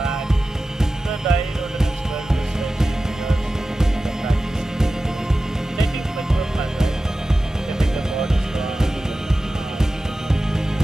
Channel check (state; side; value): normal; both; correlation 0.95